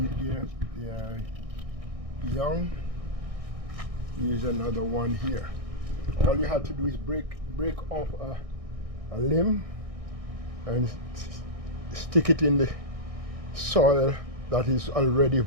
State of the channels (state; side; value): late; left; 1.6 ms